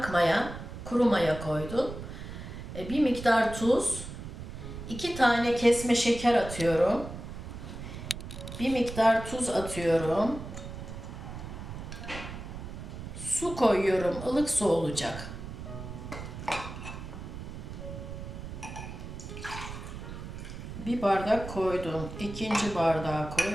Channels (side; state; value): right; noise; rumble, 9 dB below the sound